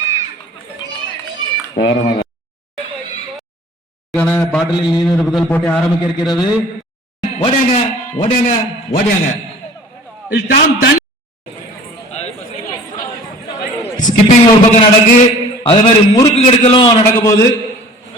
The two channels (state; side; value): normal; both; correlation 0.47